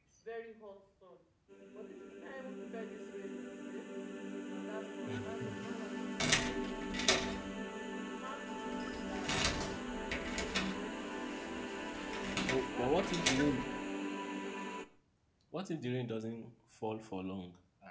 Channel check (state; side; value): identical; both; correlation 1.00